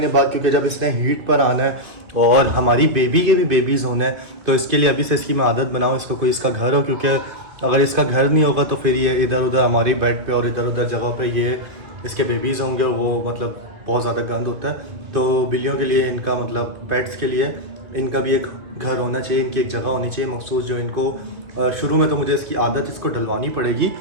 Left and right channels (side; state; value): left; late; 2.5 ms